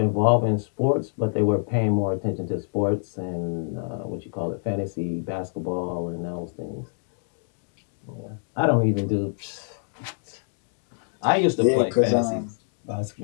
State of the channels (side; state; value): right; silent; digital silence